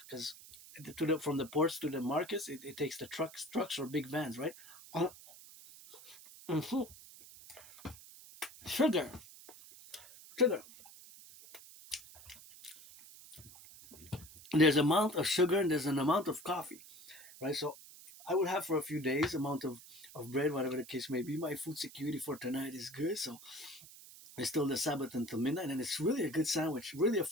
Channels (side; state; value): right; noise; hiss, 18 dB below the sound